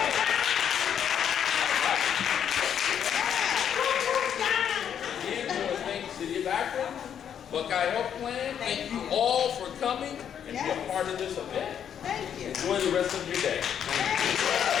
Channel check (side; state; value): right; quieter; 8.8 dB